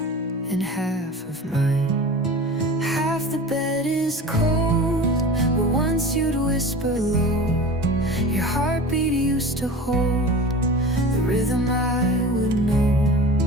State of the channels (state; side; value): normal; both; correlation 0.36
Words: and half of mine. Half the bed is cold, but once you'd whisper low. Your heartbeat used to hold the rhythm I would know.